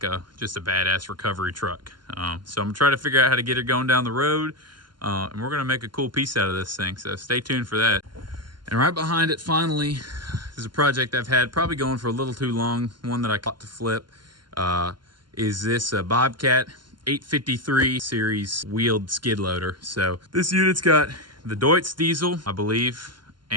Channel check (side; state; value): left; late; 0.71 ms